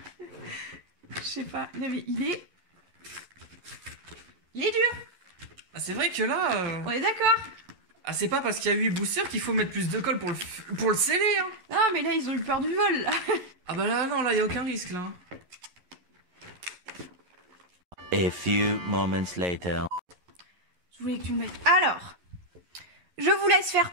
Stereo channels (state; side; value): late; left; 11 ms